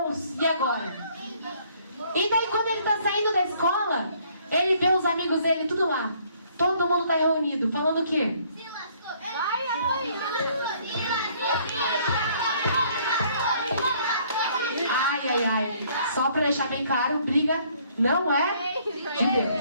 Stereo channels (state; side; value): inverted; both; correlation -0.63